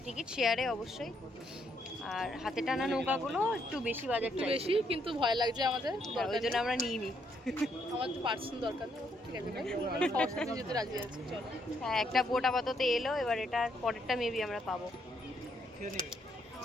টিকিট, শেয়ারে অবশ্যই। আর হাতে টানা নৌকাগুলো একটু বেশি বাজেট একটু চাইছে, বেশি, কিন্তু ভয় লাগছে আমাদের। ওই জন্য আমরা নিইনি। আমার তো পার্সন দরকার নেই, ঠিক আছে ভাই, আমরা সবার সাথে যেতে রাজি আছি, চলো। হ্যাঁ, একটা বোট আপাতত এলো, এবার এটা পরেরটা মেবি আমরা পাবো।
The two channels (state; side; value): normal; both; correlation 0.73